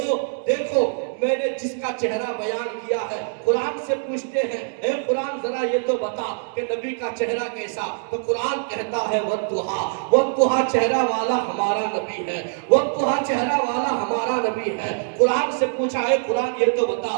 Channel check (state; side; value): silent; left; digital silence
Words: دیکھو میں نے جس کا چہرہ بیان کیا ہے، قرآن سے پوچھتے ہیں اے قرآن ذرا یہ تو بتا کہ نبی کا چہرہ کیسا، تو قرآن کہتا ہے والضحیٰ چہرہ والا ہمارا نبی ہے، والضحیٰ چہرہ والا ہمارا نبی ہے۔ قرآن سے پوچھا ہے قرآن یہ تو بتا